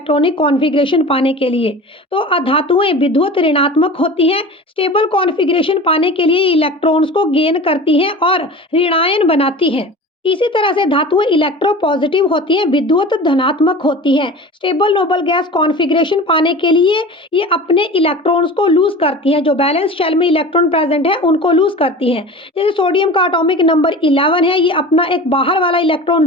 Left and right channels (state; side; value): normal; both; correlation 0.36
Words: configuration पाने के लिए। तो धातुएं विद्युत ऋणात्मक होती हैं, स्टेबल कॉन्फ़िगरेशन पाने के लिए इलेक्ट्रॉन्स को गेन करती हैं और ऋणायन बनाती हैं। इसी तरह से धातुएं इलेक्ट्रोपॉजिटिव होती हैं, विद्युत धनात्मक होती हैं। स्टेबल नोबल गैस कॉन्फ़िगरेशन पाने के लिए ये अपने इलेक्ट्रॉन्स को लूज़ करती हैं, जो बैलेंस शेल में इलेक्ट्रॉन प्रेजेंट है उनको लूज़ करती हैं। जैसे सोडियम का एटॉमिक नंबर 11 है, ये अपना एक बाहर वाला इलेक्ट्रॉन